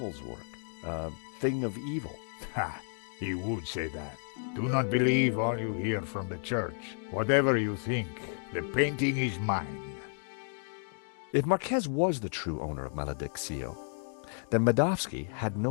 work, a thing of evil. Ha! He would say that. Do not believe all you hear from the church. Whatever you think, the painting is mine. If Marquez was the true owner of Malediccio, then Medovsky had no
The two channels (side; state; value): right; silent; digital silence